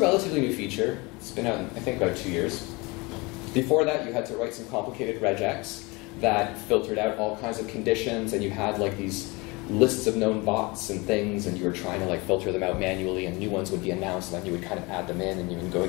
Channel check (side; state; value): right; quieter; 25.6 dB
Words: relatively new feature. It's been out, I think, about 2 years. Before that, you had to write some complicated regex that filtered out all kinds of conditions, and you had like these lists of known bots and things, and you were trying to like filter them out manually, and new ones would be announced, and then you would kind of add them in, and you would go